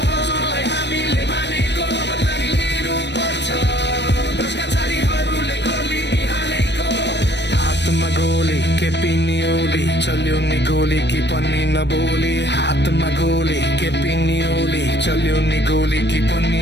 हजुरलाई हामीले मानेको बदला नि लिनु पर्छ हातमा गोली के पिन्नी ओली चल्यो नि गोली कि पनि नबोली हातमा गोली के पिन्नी ओली चल्यो नि गोली कि पनि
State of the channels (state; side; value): late; right; 0.50 ms